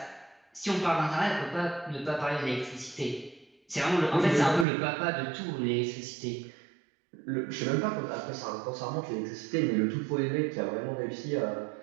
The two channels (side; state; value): left; drops out; at 4.7 s